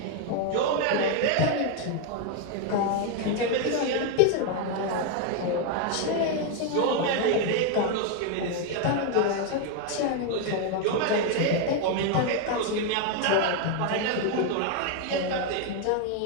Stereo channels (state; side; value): different; both; correlation 0.01